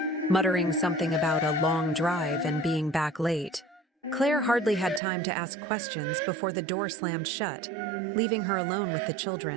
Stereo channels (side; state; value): left; drops out; at 5.0 s